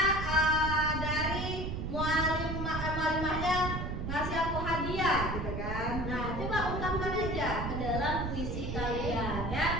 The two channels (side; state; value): right; noise; rumble, 3 dB below the sound